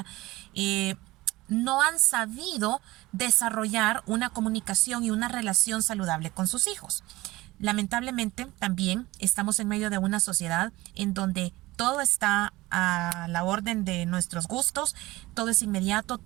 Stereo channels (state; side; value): quieter; left; 19.5 dB